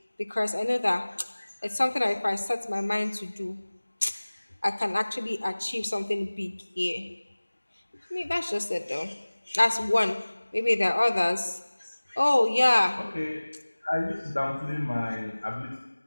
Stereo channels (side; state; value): both; inverted; correlation -1.00